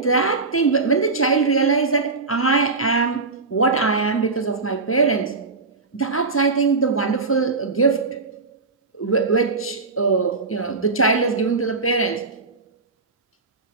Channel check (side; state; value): left; quieter; 4.0 dB